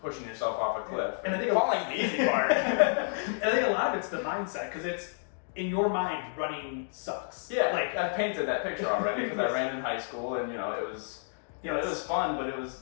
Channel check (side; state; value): right; silent; digital silence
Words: pushing yourself off a cliff. And I think falling's the easy part. And I think a lot of it's the mindset because it's in your mind running sucks. Yeah, like I've painted that picture already because I ran in high school and you know it was, it was fun, but it